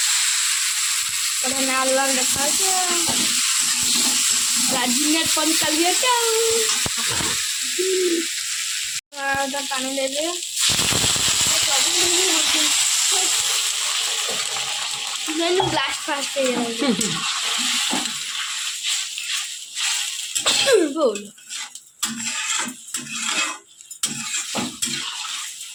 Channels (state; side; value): identical; both; correlation 1.00